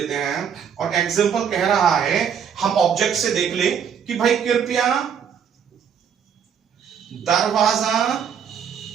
हैं, और एग्जांपल कह रहा है, हम ऑब्जेक्ट से देख ले कि भाई कृपया दरवाजा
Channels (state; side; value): quieter; left; 7.7 dB